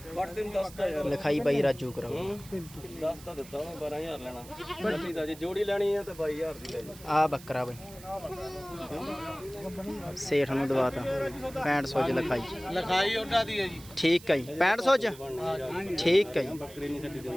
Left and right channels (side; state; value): right; noise; hiss, 19 dB below the sound